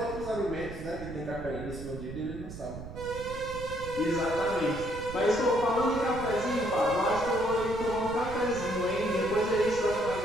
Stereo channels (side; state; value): right; noise; rumble, 11 dB below the sound